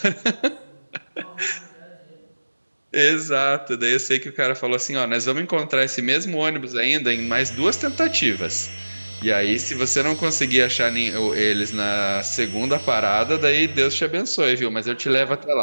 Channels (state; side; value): inverted; both; correlation -1.00